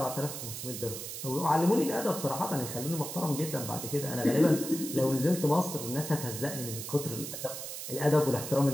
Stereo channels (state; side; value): noise; right; hiss, 7 dB below the sound